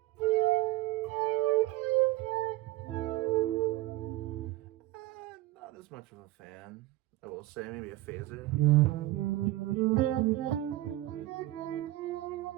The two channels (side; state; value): left; quieter; 16.7 dB